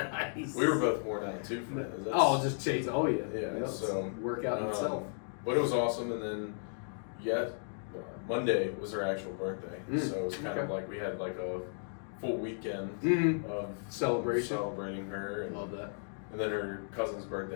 We were both worn out too from that. Just chase. Oh yeah. Yeah. So workout in itself. But it was awesome, and then Monday was her actual birthday, so it was kind of like we had like a full weekend of celebrating her. And, love that. And then her cousin's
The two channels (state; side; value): silent; right; digital silence